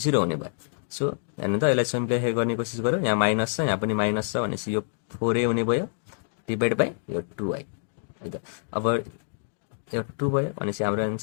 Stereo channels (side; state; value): right; silent; digital silence